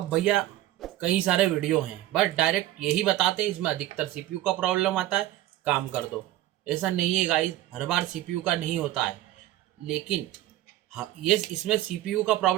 भैया कई सारे वीडियो हैं, बट डायरेक्ट यही बताते हैं इसमें अधिकतर सीपीयू का प्रॉब्लम आता है, काम कर दो। ऐसा नहीं है गाइस, हर बार सीपीयू का नहीं होता है। लेकिन हाँ, ये इसमें सीपीयू का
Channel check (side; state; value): left; quieter; 14.7 dB